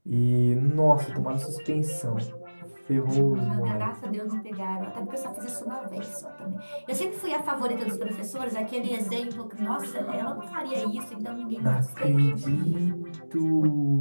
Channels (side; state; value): both; inverted; correlation -1.00